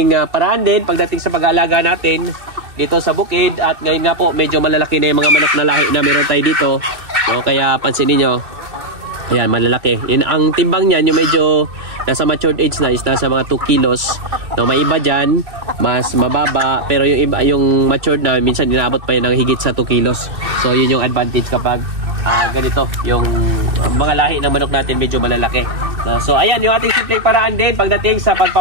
paraan din pagdating sa pag-aalaga natin dito sa bukid. At ngayon nga po medyo malalaki na yung mga manok na lahi na meron tayo dito, no? Kaya pansin niyo, ayan, malalaki. Yan, ang timbang niyan yung medyo nasa matured age na is nasa mga 2 kilos, no? May iba dyan mas mababa, pero yung iba, yung matured na minsan inaabot pa yun ng higit sa 2 kilos. So yun yung advantage kapag ganito yung mga lahi ng manok natin medyo malalaki, no? So ayan yung ating simpleng paraan din pagdating sa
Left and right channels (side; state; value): left; late; 2.6 ms